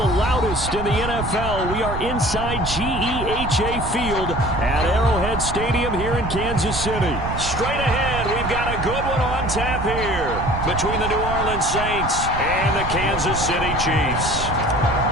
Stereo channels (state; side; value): noise; right; rumble, 7 dB below the sound